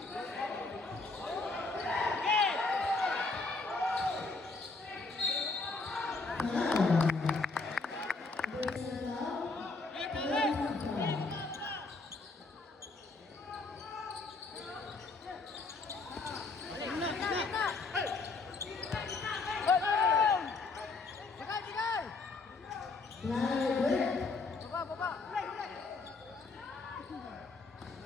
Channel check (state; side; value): quieter; right; 3.8 dB